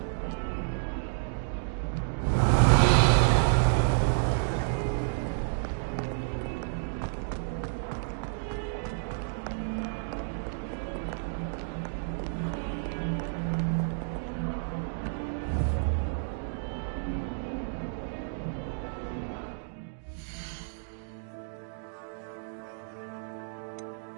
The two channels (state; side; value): silent; left; digital silence